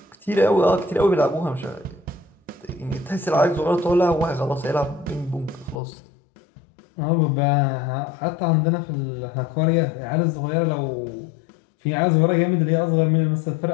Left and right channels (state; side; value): drops out; right; at 5.8 s